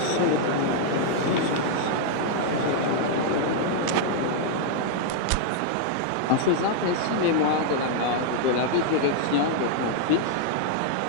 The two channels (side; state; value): both; different; correlation -0.01